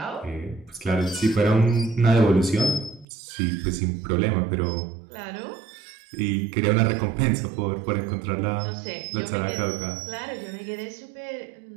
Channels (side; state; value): left; drops out; at 3.1 s